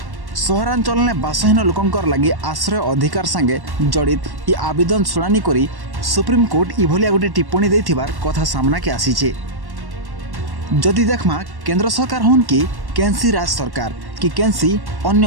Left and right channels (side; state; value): left; late; 1.1 ms